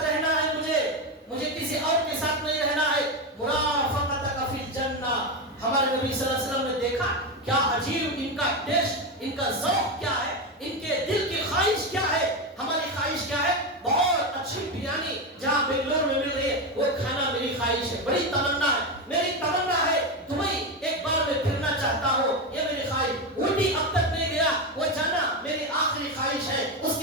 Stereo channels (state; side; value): normal; both; correlation 0.13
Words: ہمارے نبی صلی اللہ علیہ وسلم نے دیکھا کیا عجیب ان کا ٹیسٹ، ان کا ذوق کیا ہے، ان کے دل کی خواہش کیا ہے. ہماری خواہش کیا ہے؟ بہت اچھی بریانی جہاں بنگلور میں مل رہی ہے وہ کھانا میری خواہش ہے، بڑی تمنا ہے. میری تمنا ہے دبئی ایک بار میں پھرنا چاہتا ہوں، یہ میری خواہش. اونٹی اب تک نہیں گیا، وہ جانا میری آخری خواہش ہے. اس